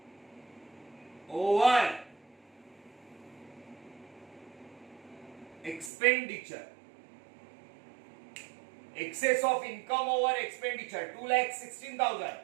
over expenditure, excess of income over expenditure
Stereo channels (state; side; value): drops out; left; at 5.9 s